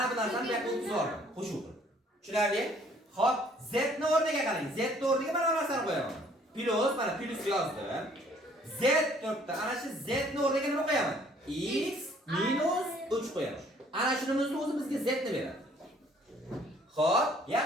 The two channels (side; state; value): both; normal; correlation 0.59